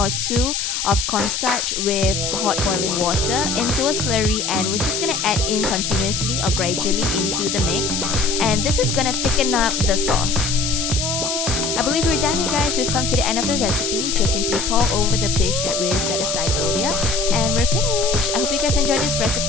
2 of cornstarch with hot boiling water into a slurry, and we're just going to add in continuously or gradually into the mix. And this is going to thicken up the sauce. I believe we're done here, guys. We've come to the end of the recipe. Just simply pour over the fish that we set aside earlier and we're finished. I hope you guys enjoyed this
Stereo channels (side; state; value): left; noise; hiss, 2 dB below the sound